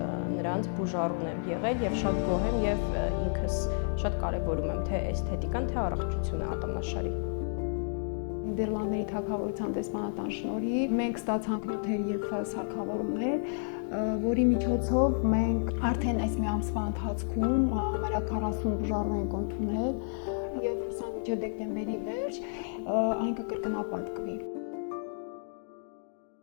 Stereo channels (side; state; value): right; silent; digital silence